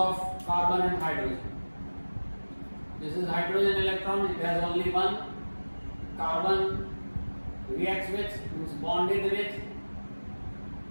carbon and hydrogen. This is hydrogen electron, it has only one. Carbon reacts with, means bonded with,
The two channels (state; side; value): inverted; both; correlation -1.00